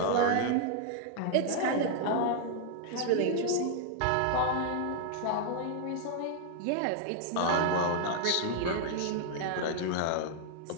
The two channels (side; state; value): both; different; correlation 0.00